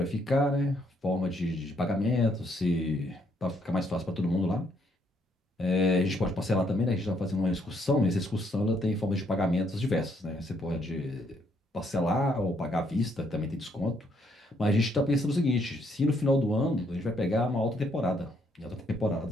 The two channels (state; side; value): normal; both; correlation 0.71